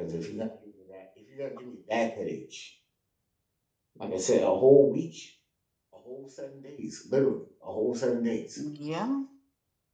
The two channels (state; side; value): identical; both; correlation 1.00